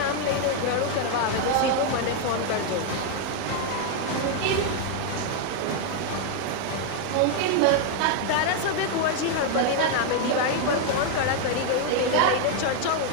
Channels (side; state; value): both; different; correlation 0.01